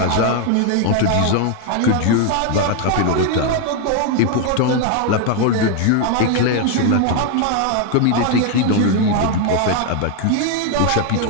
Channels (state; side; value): different; both; correlation 0.01